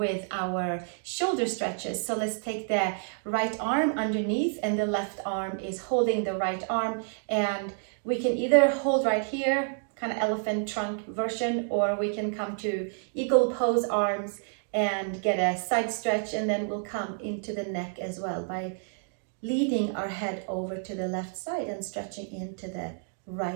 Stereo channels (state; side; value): silent; left; 59 dB below the other